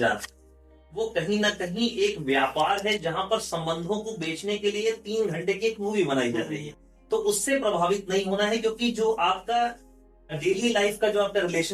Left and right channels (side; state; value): both; identical; correlation 1.00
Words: रहा है वो कहीं ना कहीं एक व्यापार है, जहां पर संबंधों को बेचने के लिए 3 घंटे की एक मूवी बनाई जा रही है। तो उससे प्रभावित नहीं होना है, क्योंकि जो आपका डेली लाइफ का जो आपका